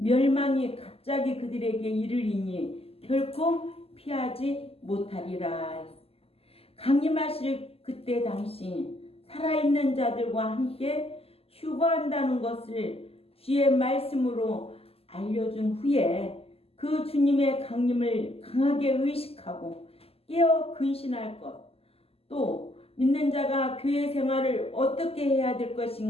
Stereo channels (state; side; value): late; right; 0.29 ms